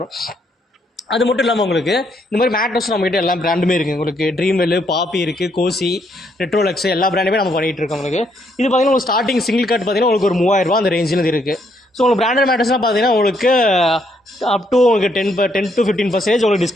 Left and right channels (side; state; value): both; normal; correlation 0.73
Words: அது மட்டும் இல்லாமல் உங்களுக்கு இந்த மாதிரி மேட்ரஸ் நம்மகிட்ட எல்லா பிராண்டுமே இருக்குது உங்களுக்கு. ட்ரீம்வெல், பாப்பி இருக்குது, கோசி, ரெட்ரோலக்ஸ் எல்லா பிராண்டுமே நம்ம பண்ணிகிட்டு இருக்கோம் உங்களுக்கு. இது பார்த்தீங்கன்னா உங்களுக்கு ஸ்டார்டிங் சிங்கிள் கார்டு பார்த்தீங்கன்னா உங்களுக்கு ஒரு 3000 அந்த ரேஞ்சில் இருக்குது. ஸோ உங்களுக்கு பிராண்டட் மேட்ரஸ்லாம் பார்த்தீங்கன்னா உங்களுக்கு அப் டு உங்களுக்கு 10 to 15% உங்களுக்கு